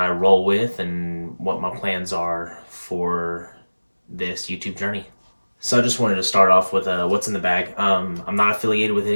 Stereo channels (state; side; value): inverted; both; correlation -1.00